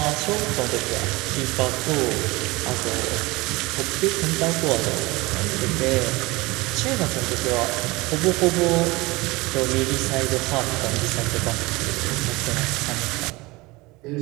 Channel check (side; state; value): left; quieter; 22.6 dB